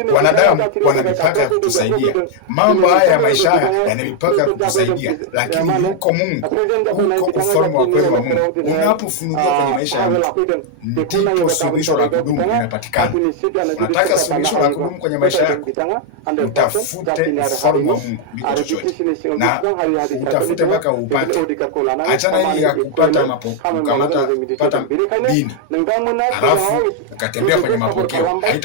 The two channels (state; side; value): different; both; correlation 0.00